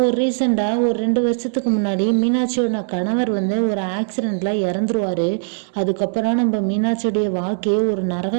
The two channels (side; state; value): left; silent; 66 dB below the other